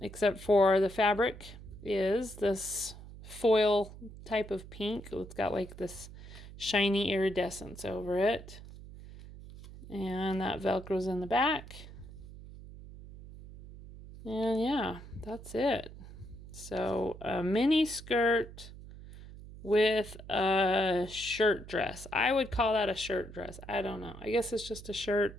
except for the fabric is this foil type of pink. It's got like this shiny iridescence over it. And that Velcro's in the back. And yeah, that's it. So a mini skirt with a shirt dress. I would call that a shirt dress. I don't know. I guess it's just a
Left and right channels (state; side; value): noise; right; hum, 15 dB below the sound